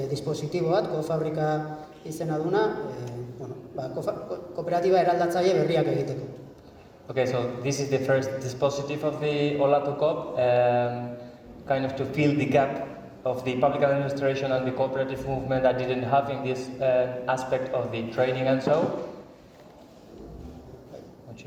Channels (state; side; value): identical; both; correlation 1.00